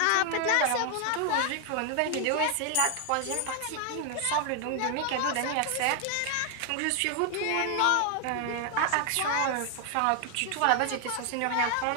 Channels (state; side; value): different; both; correlation 0.00